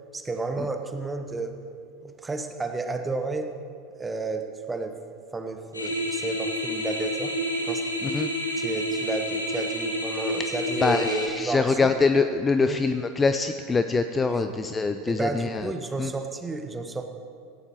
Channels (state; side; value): normal; both; correlation 0.54